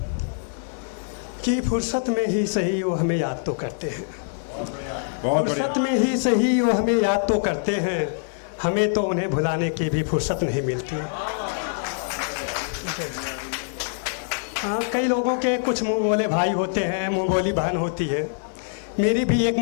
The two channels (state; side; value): silent; right; digital silence